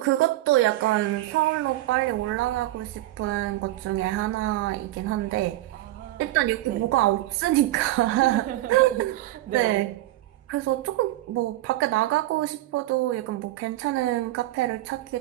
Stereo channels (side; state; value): left; quieter; 16.1 dB